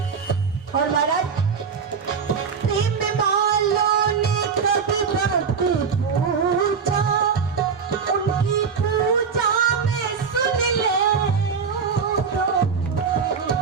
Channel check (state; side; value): quieter; left; 6.0 dB